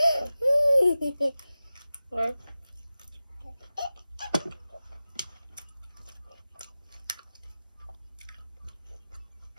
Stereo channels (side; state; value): both; inverted; correlation -0.95